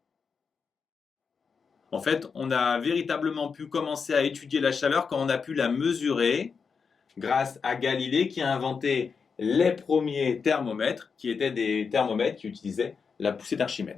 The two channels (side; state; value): right; quieter; 5.6 dB